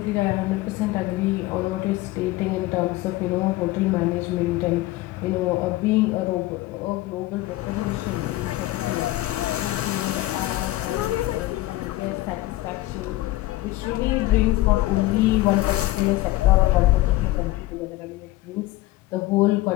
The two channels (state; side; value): quieter; right; 17.7 dB